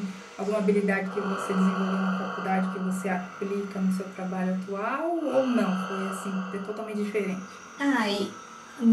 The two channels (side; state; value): both; identical; correlation 1.00